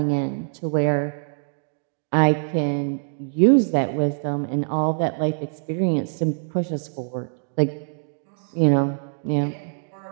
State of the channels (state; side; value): silent; left; digital silence